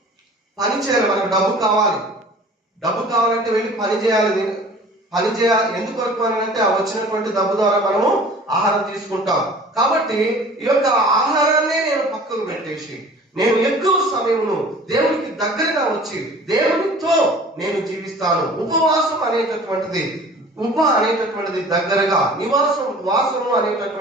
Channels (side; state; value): both; normal; correlation 0.46